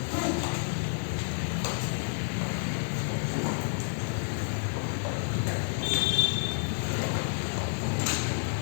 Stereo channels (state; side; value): silent; right; digital silence